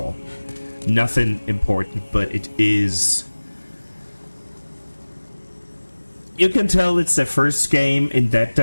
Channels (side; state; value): both; inverted; correlation -1.00